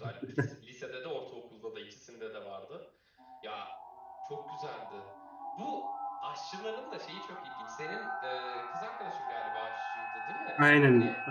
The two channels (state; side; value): identical; both; correlation 1.00